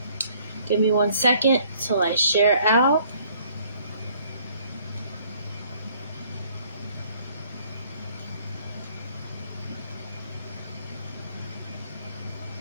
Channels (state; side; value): inverted; both; correlation -0.61